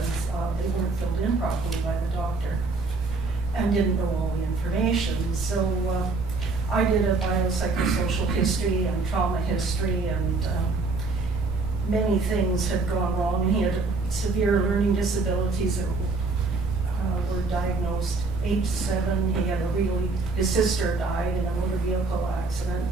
they weren't filled in properly by the doctor and didn't know all the information. So I did a biopsychosocial history and trauma history, and many things had gone wrong. And he had severe learning disabilities that were diagnosed. Age 7, he had his sister died in a motor vehicle accident.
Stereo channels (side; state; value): left; quieter; 3.8 dB